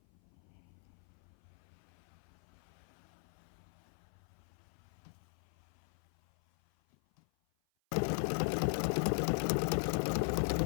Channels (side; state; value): right; silent; 51 dB below the other